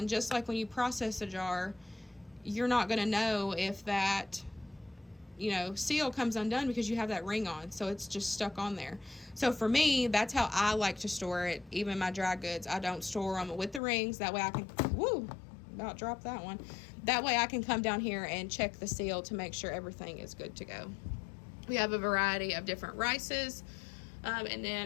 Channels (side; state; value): right; drops out; at 13.8 s